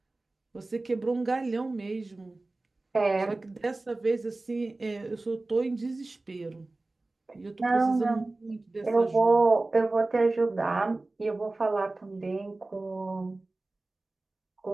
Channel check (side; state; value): left; quieter; 3.1 dB